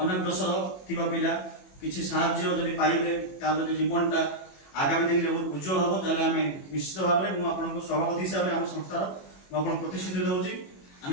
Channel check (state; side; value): late; right; 21 ms